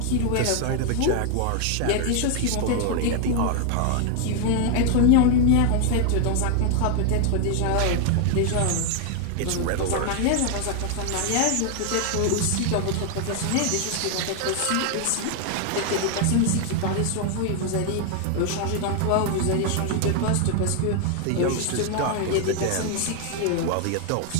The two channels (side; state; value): both; different; correlation 0.00